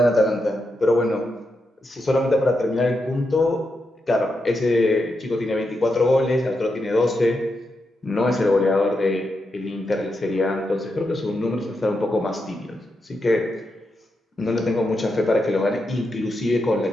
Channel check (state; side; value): normal; both; correlation 0.85